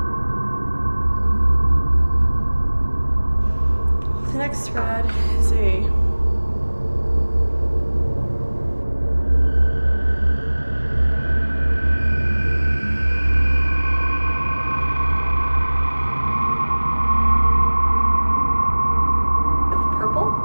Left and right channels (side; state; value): both; inverted; correlation -1.00